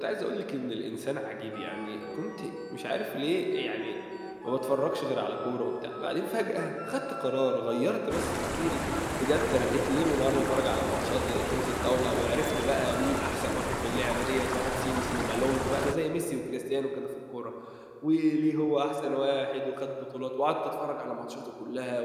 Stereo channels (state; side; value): identical; both; correlation 1.00